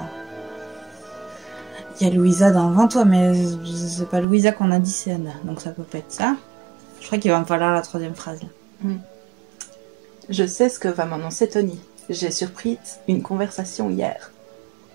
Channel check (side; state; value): left; drops out; at 4.2 s